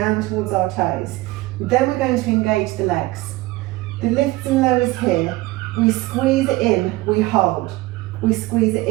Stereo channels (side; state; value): left; quieter; 19.7 dB